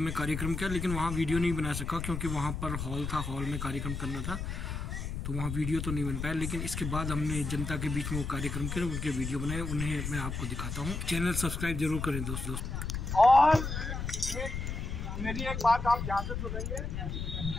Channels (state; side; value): noise; left; rumble, 4 dB below the sound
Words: कार्यक्रम किया, लेकिन वहाँ वीडियो नहीं बना सका क्योंकि वहाँ पर हॉल था, हॉल में कार्यक्रम करना था, तो वहाँ वीडियो तो नहीं बन पाया। लेकिन इसके बाद हमने जनता के बीच में वो कार्यक्रम किया, उनके वीडियो बनाए, उन्हें मैं आपको दिखाता हूँ। चैनल सब्सक्राइब जरूर करें दोस्तों। और मेरी एक बात आप ध्यान से सुनेंगे,